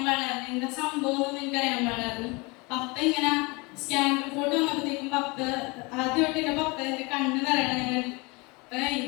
പാടില്ലായിരുന്നു, എന്താ സംഭവം ഒന്നും എനിക്കറിയാൻ പാടില്ലായിരുന്നു. പപ്പ ഇങ്ങനെ സ്കാൻ റിപ്പോർട്ട് വന്നപ്പോഴത്തേക്കും ആദ്യമായിട്ട് എൻ്റെ പപ്പ എൻ്റെ കണ്ണ് നിറയണം ഞങ്ങൾ. അപ്പം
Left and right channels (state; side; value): quieter; right; 26.7 dB